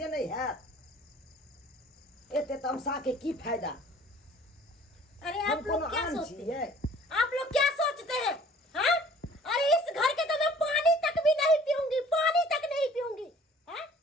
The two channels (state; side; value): normal; both; correlation 0.51